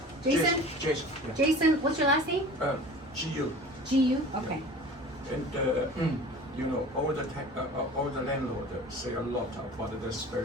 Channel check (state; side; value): normal; both; correlation 0.41